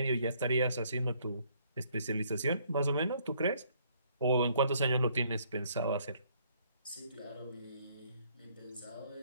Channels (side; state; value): both; inverted; correlation -0.65